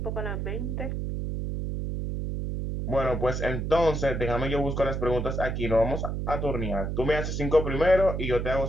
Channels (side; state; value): right; noise; hum, 2 dB below the sound